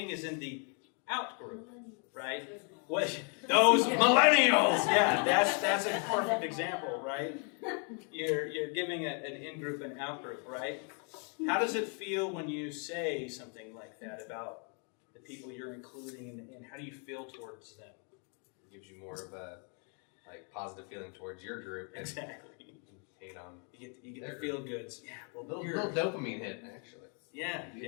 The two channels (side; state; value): right; quieter; 39.1 dB